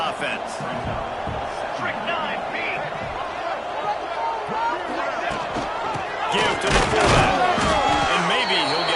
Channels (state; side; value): identical; both; correlation 1.00